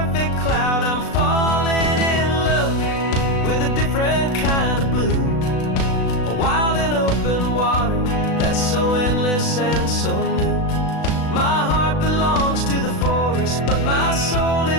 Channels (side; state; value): right; late; 36 ms